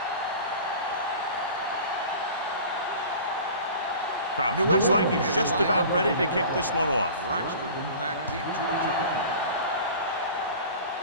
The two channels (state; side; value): inverted; both; correlation -0.40